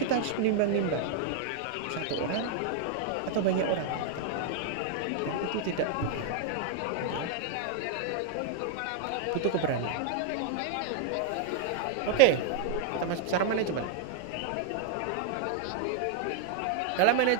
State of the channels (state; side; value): different; both; correlation 0.00